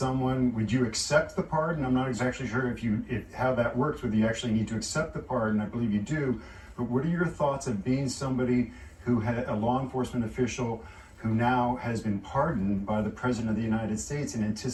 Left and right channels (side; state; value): both; identical; correlation 1.00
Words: Would you accept the pardon? I'm not exactly sure if how that works, whether you actually need to accept the pardon. I believe you do. But what are your thoughts of being somebody who had a law enforcement official who now has been pardoned by the President of the United States in